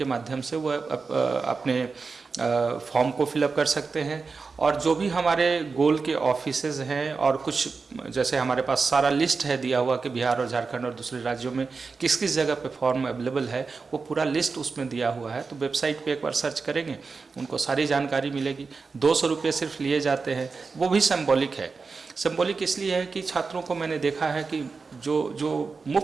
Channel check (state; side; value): quieter; left; 4.6 dB